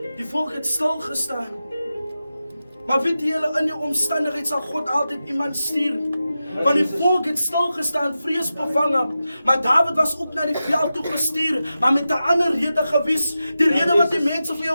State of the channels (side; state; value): both; inverted; correlation -0.92